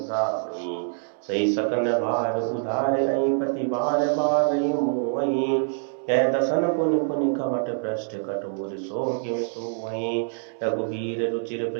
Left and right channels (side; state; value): left; silent; digital silence